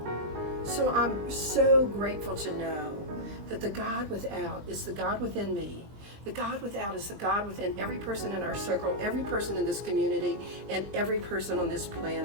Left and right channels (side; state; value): left; late; 20 ms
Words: So I'm so grateful to know that the God without is the God within me. The God without is the God within every person in our circle, every person in this community, and every person on this